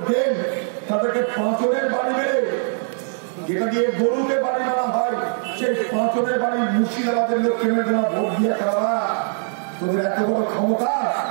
দেন তাদেরকে পাঁচনের বাড়ি দেবে, যেটা দিয়ে গরুকে বাড়ি মারা হয় সেই পাঁচনের বাড়ি মুর্শিদাবাদের লোককে যারা ভোট দিয়ে করা। তোদের এত বড় ক্ষমতা,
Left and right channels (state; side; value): silent; left; 60 dB below the other